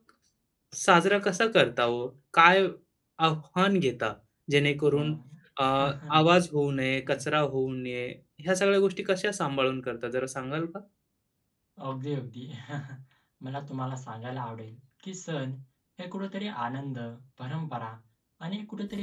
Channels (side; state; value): both; identical; correlation 1.00